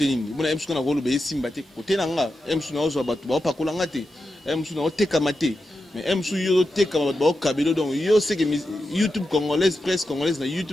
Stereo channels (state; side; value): normal; both; correlation 0.89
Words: nini bona emsu na rolo be simba te côté nanga emsu na ozo batu ba pakola ngate emsu na oteka mate mais emsu yo teka ba kabelo donc yo c'est que YouTube congolaise presse congolaise na